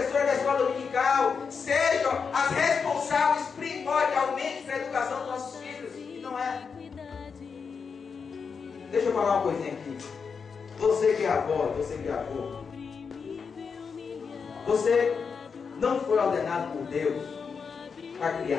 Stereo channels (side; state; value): right; quieter; 5.8 dB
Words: da escola dominical sejam as responsáveis primordialmente pela educação dos nossos filhos. E não é. Deixa eu falar uma coisinha aqui. Você que é avó, você que é avô, você não foi ordenado por Deus para